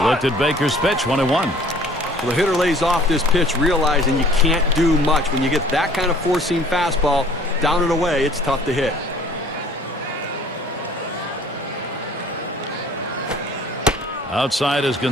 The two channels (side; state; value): both; normal; correlation 0.52